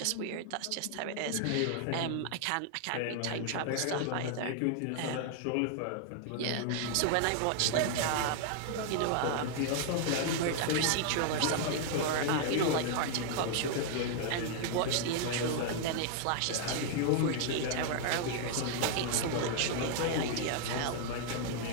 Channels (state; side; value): different; both; correlation 0.00